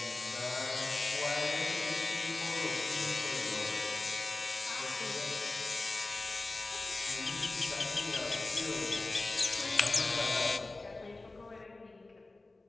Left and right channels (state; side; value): quieter; right; 3.2 dB